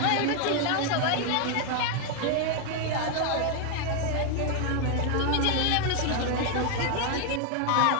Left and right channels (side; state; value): both; different; correlation 0.00